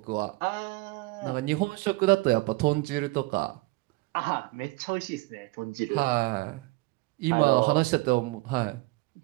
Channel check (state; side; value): quieter; left; 23.1 dB